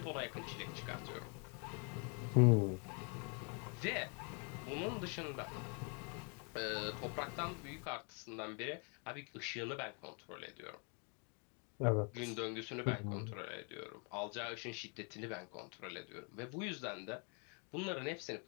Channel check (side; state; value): right; quieter; 37.1 dB